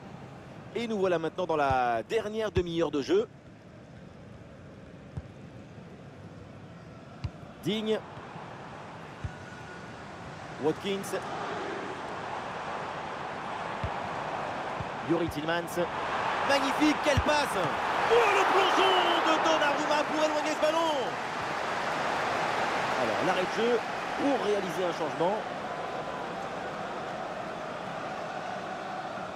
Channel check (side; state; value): both; identical; correlation 1.00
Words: Et nous voilà maintenant dans la dernière demi-heure de jeu. Digne. Watkins. Youri Tillmans. Magnifique, quelle passe! Oh, le plongeon de Donnarumma pour éloigner ce ballon! Alors, l'arrêt de jeu pour réaliser un changement.